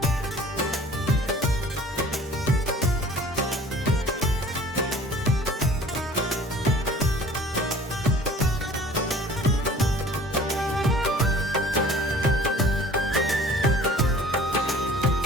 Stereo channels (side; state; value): both; normal; correlation 0.48